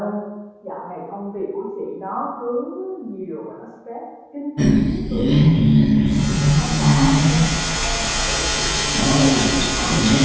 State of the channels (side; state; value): both; identical; correlation 1.00